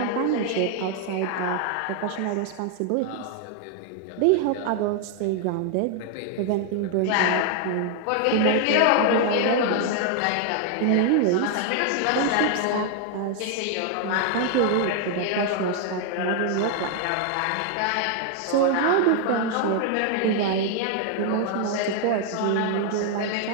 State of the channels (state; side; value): different; both; correlation 0.00